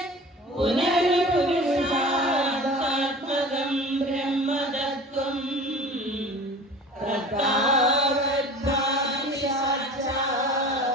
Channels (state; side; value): normal; both; correlation 0.40